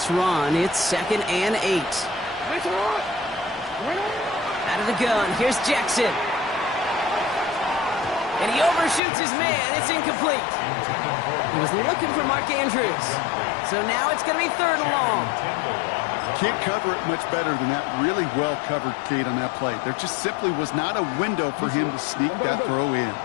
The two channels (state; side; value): drops out; right; at 9.0 s